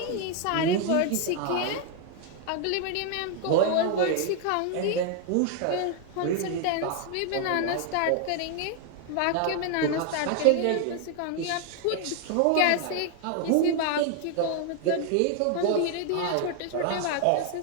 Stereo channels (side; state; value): both; different; correlation 0.00